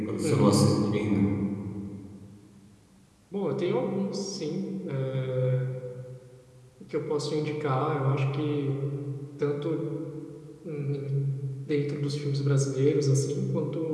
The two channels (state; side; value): identical; both; correlation 1.00